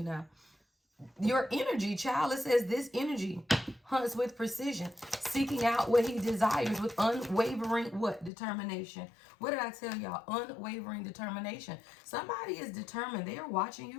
now. Your energy, child. It says this energy hunts with precision, seeking out what he desires with unwavering what? Determination. What did I tell y'all? Unwavering determination. Somebody is determined. They are watching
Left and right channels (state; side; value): drops out; right; at 8.3 s